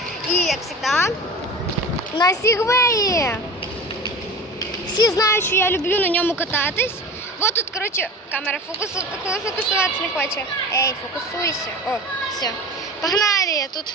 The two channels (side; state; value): both; normal; correlation 0.35